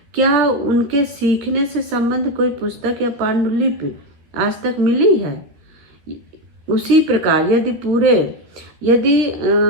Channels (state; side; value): late; left; 13 ms